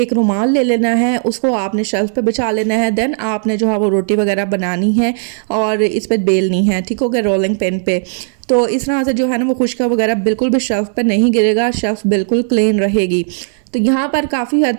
रुमाल ले लेना है, उसको आपने शेल्फ पे बिछा लेना है, देन आपने जो है वो रोटी वगैरह बनानी है और इस पर बेलनी है, ठीक हो गया, रोलिंग पेन पे। तो इस तरह से जो है ना वो खुशका वगैरह बिल्कुल भी शेल्फ पे नहीं गिरेगा, शेल्फ बिल्कुल क्लीन रहेगी। तो यहाँ पर काफ़ी हद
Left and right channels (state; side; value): silent; left; digital silence